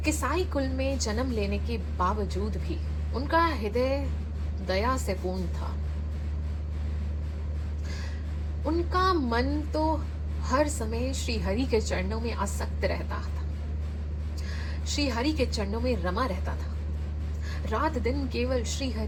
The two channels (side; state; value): both; identical; correlation 1.00